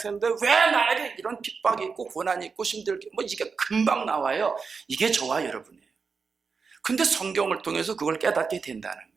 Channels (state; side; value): quieter; left; 5.2 dB